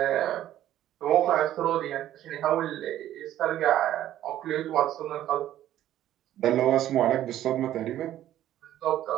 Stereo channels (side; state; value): left; quieter; 12.6 dB